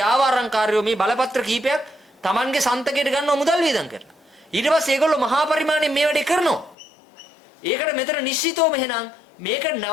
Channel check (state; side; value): drops out; right; at 6.8 s